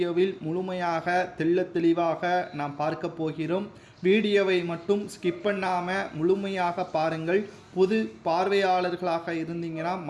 முழுமையாக தெளிவாக நாம் பார்க்க போகிறோம். வீடியோவை மட்டும் ஸ்கிப் பண்ணாமல் முழுமையாக பாருங்கள். புது பார்வையாளர்களாக இருந்தீங்கன்னா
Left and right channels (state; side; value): identical; both; correlation 1.00